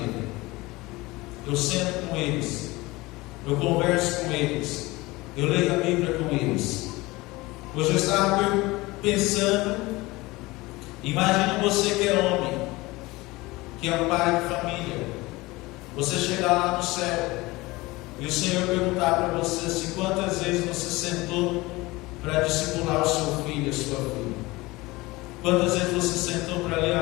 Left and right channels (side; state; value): right; quieter; 21.3 dB